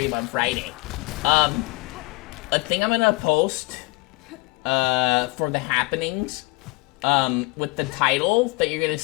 on Friday. A thing I'm gonna post for the happenings with the title that you're gonna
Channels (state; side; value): quieter; right; 24.6 dB